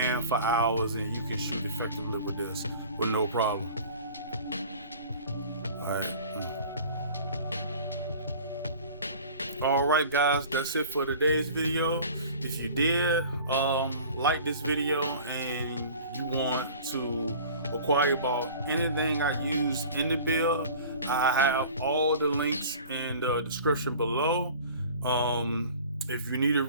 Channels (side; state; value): both; inverted; correlation -0.43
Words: for hours and you can shoot effectively with this with no problem. Alright guys, that's it for today's video. If you did like this video and you want to inquire about anything I use in the build, I have all the links in the description below. If you need to